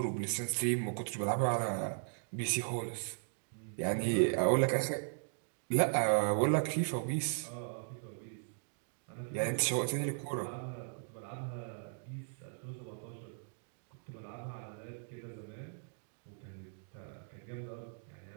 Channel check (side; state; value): left; silent; digital silence